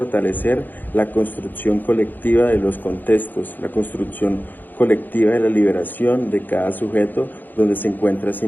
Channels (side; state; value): right; late; 0.088 ms